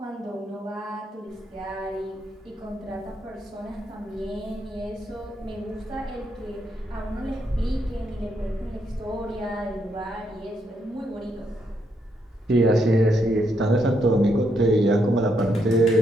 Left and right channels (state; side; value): normal; both; correlation 0.77